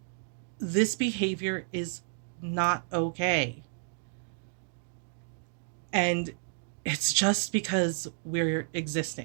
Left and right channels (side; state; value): left; silent; digital silence